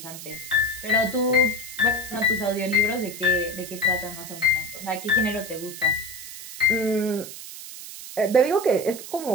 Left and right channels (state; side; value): noise; right; hiss, 12 dB below the sound